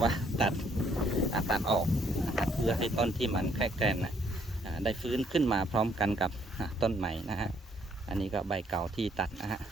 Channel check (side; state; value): both; normal; correlation 0.67